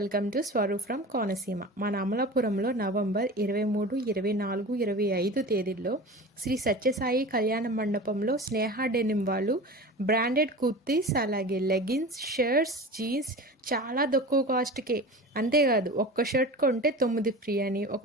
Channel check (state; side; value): normal; both; correlation 0.34